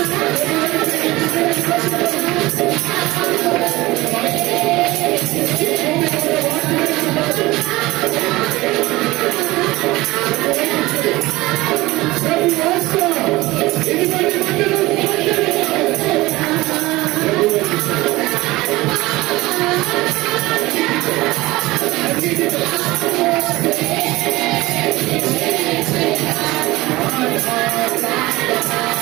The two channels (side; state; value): left; quieter; 19.7 dB